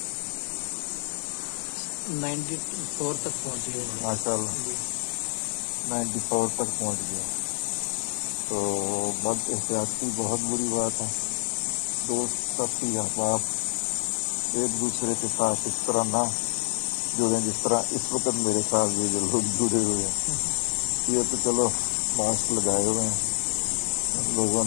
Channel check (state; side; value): silent; right; digital silence